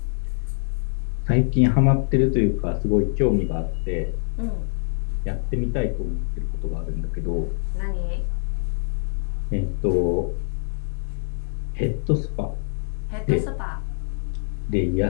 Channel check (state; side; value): silent; right; 62 dB below the other